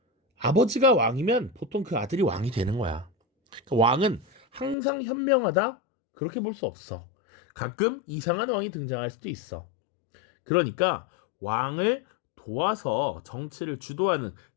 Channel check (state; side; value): drops out; right; at 4.8 s